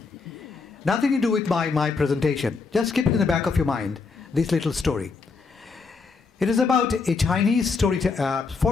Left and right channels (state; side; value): quieter; right; 4.6 dB